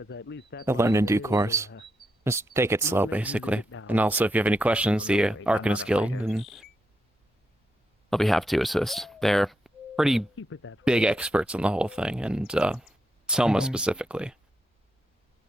at least that I'll learn in way due it will, course. Just take it slow, basically. And also, if you have any questions, the Arcanist Guild, and I'll be happy to assist. They're pretty keep it that way. big experts on the whole thing, and Selma Mhm. specifically.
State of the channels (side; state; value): both; normal; correlation 0.83